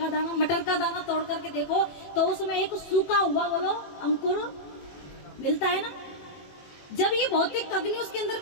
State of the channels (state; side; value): late; right; 21 ms